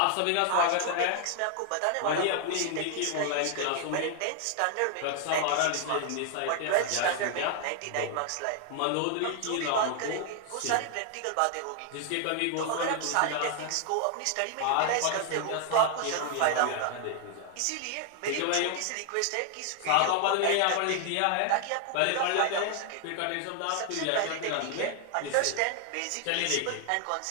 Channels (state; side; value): different; both; correlation 0.00